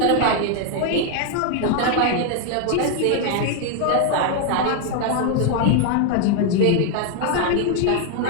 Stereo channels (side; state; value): both; different; correlation 0.00